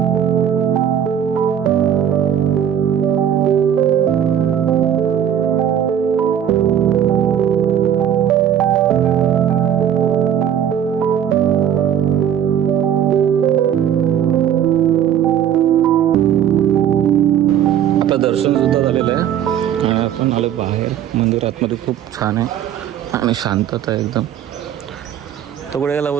छान आहे आणि शांतता आहे एकदम. तो कुठे गेला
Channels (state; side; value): quieter; left; 9.6 dB